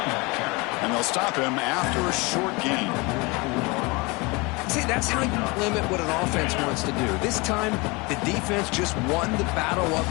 And they'll stop him after a short gain. See, that's how you limit what an offense wants to do. This time, the defense just won the battle up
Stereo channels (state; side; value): quieter; right; 26.4 dB